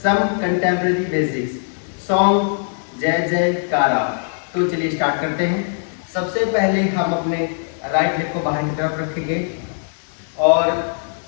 contemporary basics. Song जय जय कारा। तो चलिए start करते हैं। सबसे पहले हम अपने राइट लेग को बाहर की तरफ रखेंगे और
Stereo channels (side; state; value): right; silent; digital silence